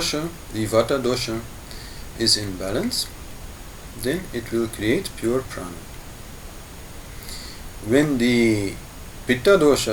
the vata dosha, is in balance, then it will create pure prana. When the pitta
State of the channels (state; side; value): identical; both; correlation 1.00